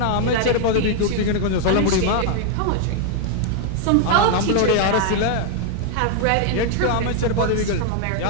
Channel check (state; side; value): different; both; correlation 0.00